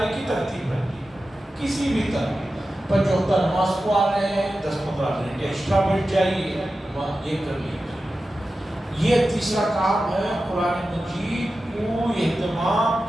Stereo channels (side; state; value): both; normal; correlation 0.93